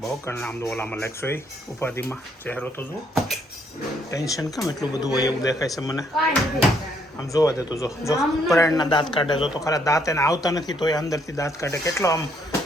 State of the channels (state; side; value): normal; both; correlation 0.70